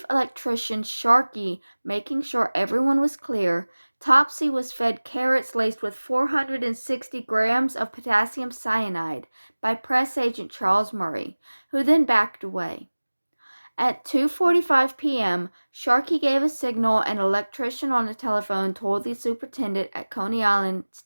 Electrician Sharkey making sure everyone was clear, Topsy was fed carrots laced with 460 grams of potassium cyanide by press agent Charles Murray, who then backed away. At 2:45 p.m., Sharkey gave a signal and an electrician on the telephone told the superintendent at Coney Island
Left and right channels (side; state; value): both; inverted; correlation -1.00